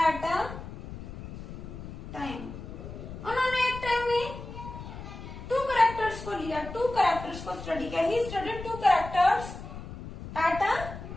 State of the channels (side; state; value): left; noise; rumble, 11 dB below the sound